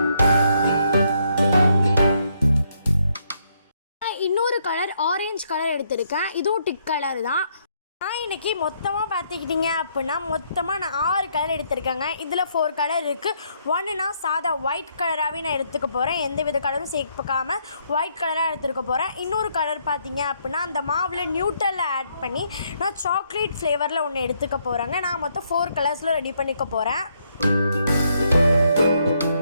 இன்னொரு கலர் ஆரஞ்சு கலர் எடுத்திருக்கேன். இதுவும் டிக் கலர் தான். நான் இன்றைக்கி மொத்தமாக பார்த்துக்கிட்டிங்க அப்படின்னா மொத்தமாக நான் 6 கலர் எடுத்திருக்கேங்க. இதில் 4 கலர் இருக்குது. ஒன்றுனா சாதா ஒயிட் கலராகவே நான் எடுத்துக்க போகிறேன், எந்த வித கலரும் சேர்க்காமல் ஒயிட் கலராக எடுத்துக்க போகிறேன். இன்னொரு கலர் பார்த்திங்க அப்படின்னா அந்த மாவில் நியூட்ரலில் ஆட் பண்ணி நான் சாக்லேட் ஃப்ளேவரில் ஒன்று எடுத்துக்க போகிறேங்க. நான் மொத்தம் 4 கலர்ஸில் ரெடி பண்ணிக்க போகிறேன்.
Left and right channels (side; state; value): both; inverted; correlation -0.73